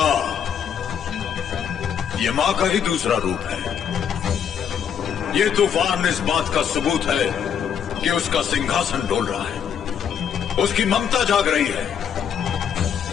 ये माँ का ही दूसरा रूप है। ये तूफान इस बात का सबूत है कि उसका सिंहासन डोल रहा है, उसकी ममता जाग रही है।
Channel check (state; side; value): quieter; right; 8.2 dB